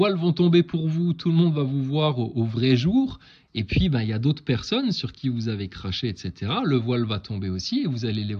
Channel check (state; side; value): identical; both; correlation 1.00